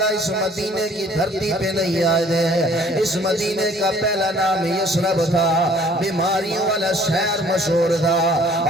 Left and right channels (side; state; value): both; normal; correlation 0.56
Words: اس مدینے کی دھرتی پہ نہیں آئے دے, اس مدینے کا پہلا نام یثرب تھا, بیماریوں والا شہر مشہور تھا,